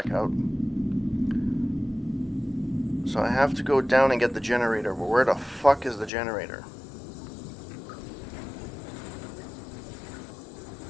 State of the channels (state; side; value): drops out; right; at 6.1 s